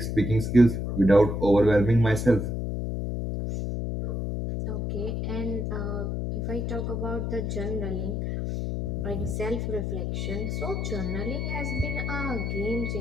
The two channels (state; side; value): noise; left; hum, 2 dB below the sound